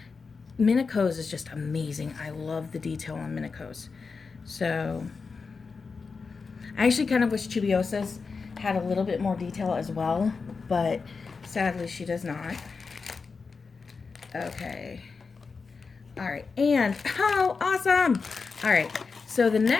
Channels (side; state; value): right; quieter; 4.8 dB